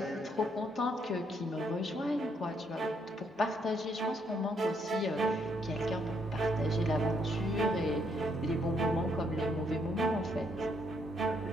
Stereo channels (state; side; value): normal; both; correlation 0.72